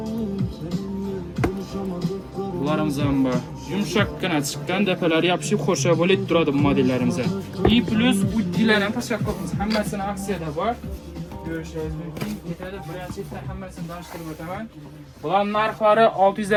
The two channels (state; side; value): identical; both; correlation 1.00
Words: Bularimiz ham bor. Yumshoqqina chiqqan, dapalari yopishib xo'sha bo'lib turadi bu modellarimiz. И plus uddilar ham tashlab qo'yamiz. Hammasini aksiyada bor. Ko'rishingiz mumkin. Ketadi, birinchidan hammasini tanishtirib o'taman. Bular narxlari